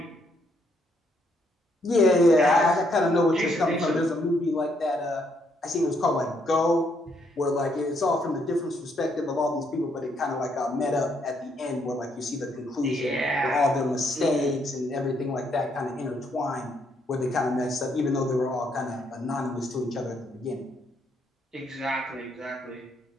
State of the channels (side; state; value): both; normal; correlation 0.73